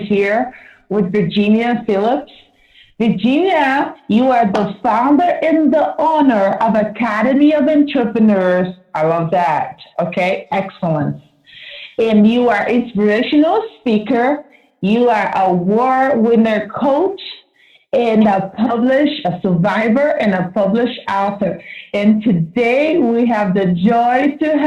with Virginia Phillips. Virginia, you are the founder and the owner of Academy of Entrepreneurs. I love that. Okay, excellent. And you are inspirational speaker. You are a award winner coach and a survivor and a published author. And today we have the joy to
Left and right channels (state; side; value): identical; both; correlation 1.00